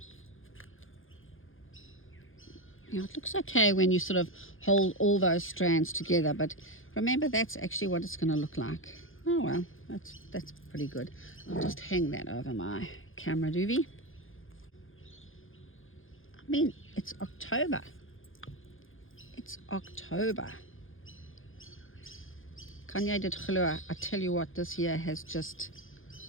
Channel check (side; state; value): right; late; 0.59 ms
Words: Yeah, it looks okay when you sort of hold all those strands together, but remember that's actually what it's going to look like. Oh well, that's pretty good. I'll just hang that over my camera doobie. I mean, it's October. It's October. Kanye did glo. I tell you what, this year has just,